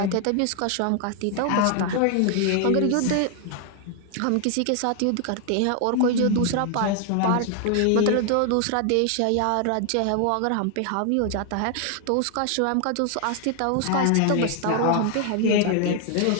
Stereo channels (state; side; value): different; both; correlation 0.00